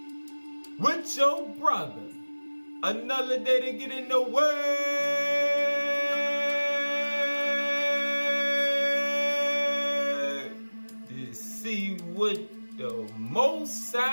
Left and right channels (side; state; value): both; inverted; correlation -1.00